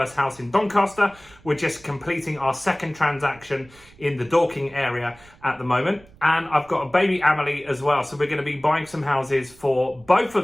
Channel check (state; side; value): noise; right; rumble, 26 dB below the sound